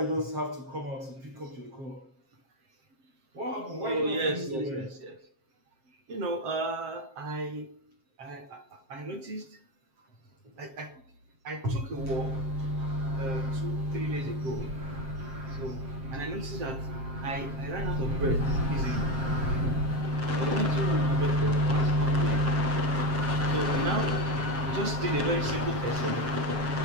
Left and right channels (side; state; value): left; late; 7.5 ms